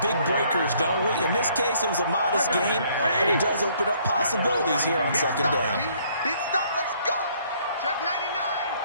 big breakers, don't we? In this case, it was a modest gain, but it does open up possibilities here on second down. Big stop, let's go. Check 99.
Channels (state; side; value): inverted; both; correlation -0.64